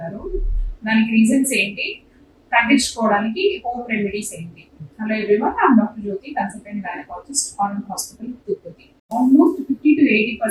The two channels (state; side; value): identical; both; correlation 1.00